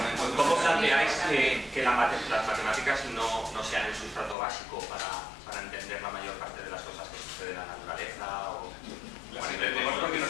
planteáis que las matemáticas no sean el sustrato básico para entender la mayor parte de las cosas que suceden en la naturaleza? Las entendemos porque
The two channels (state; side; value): drops out; right; at 4.4 s